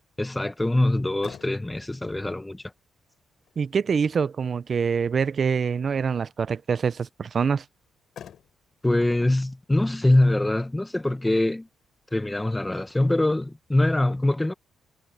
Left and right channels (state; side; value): normal; both; correlation 0.94